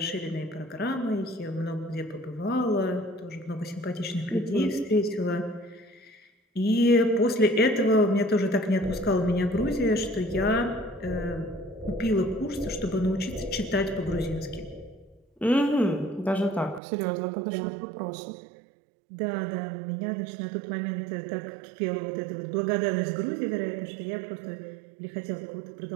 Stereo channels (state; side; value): drops out; left; at 16.8 s